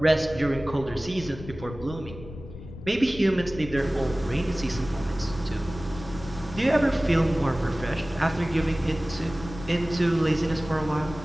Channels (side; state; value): left; noise; rumble, 13 dB below the sound